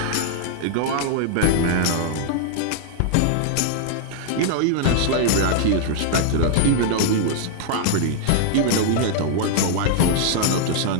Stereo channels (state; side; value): different; both; correlation -0.01